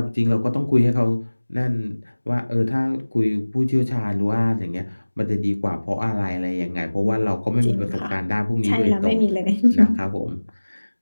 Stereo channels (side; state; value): both; inverted; correlation -1.00